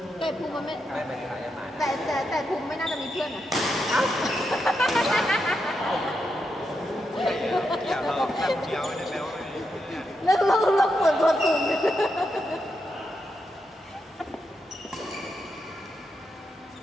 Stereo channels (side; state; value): both; normal; correlation 0.84